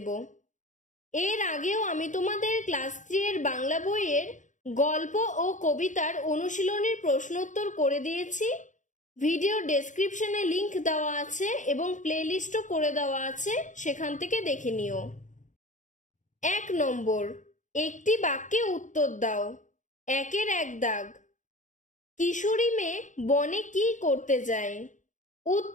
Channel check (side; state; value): right; late; 0.36 ms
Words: এর আগেও আমি তোমাদের ক্লাস 3 এর বাংলা বইয়ের গল্প ও কবিতার অনুশীলনীর প্রশ্নোত্তর করে দিয়েছি। ভিডিও ডেসক্রিপশনে লিংক দেওয়া আছে এবং প্লেলিস্টও করে দেওয়া আছে, সেখান থেকে দেখে নিও। 1 নম্বর, একটি বাক্যে উত্তর দাও। 1-এর 1 দাগ। কিশোরী মেয়ে বনে কি করতে যায়?